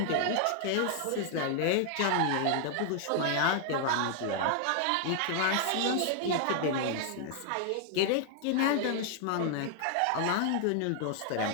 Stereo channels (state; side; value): different; both; correlation 0.00